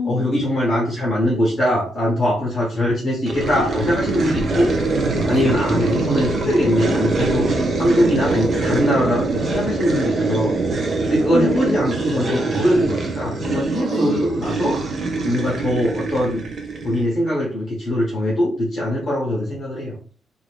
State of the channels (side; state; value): both; normal; correlation 0.79